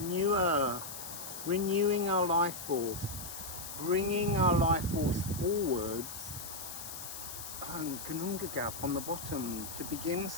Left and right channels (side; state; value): left; noise; hiss, 9 dB below the sound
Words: renewing our life force, bringing our life force forwards, and Gununga Gap on the bottom, to begin